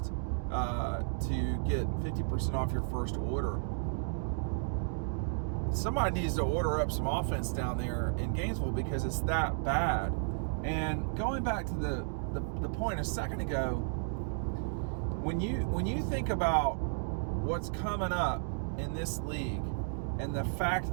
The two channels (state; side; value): silent; left; digital silence